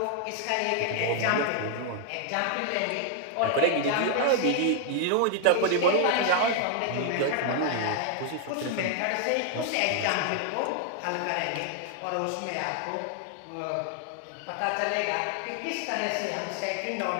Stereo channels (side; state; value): both; different; correlation 0.00